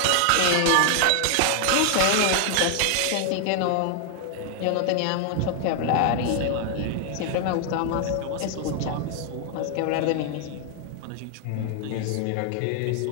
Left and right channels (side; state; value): both; different; correlation 0.00